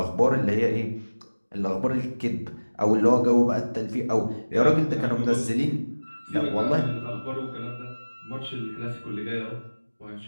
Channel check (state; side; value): inverted; both; correlation -1.00